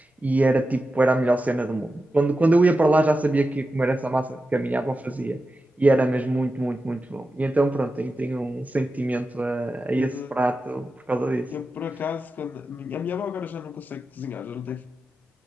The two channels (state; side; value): normal; both; correlation 0.91